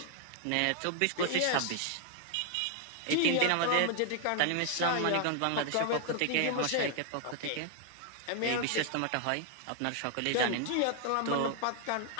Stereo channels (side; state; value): both; different; correlation 0.00